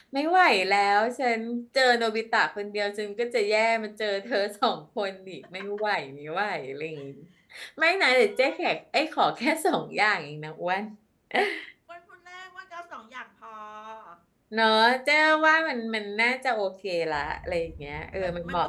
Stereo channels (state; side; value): identical; both; correlation 1.00